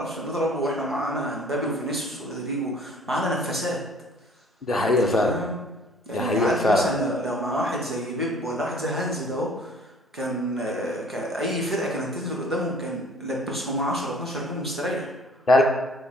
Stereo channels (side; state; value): both; normal; correlation 0.53